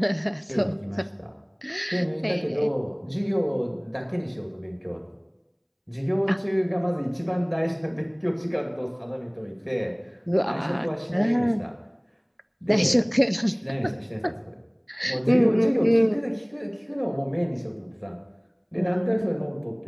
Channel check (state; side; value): identical; both; correlation 1.00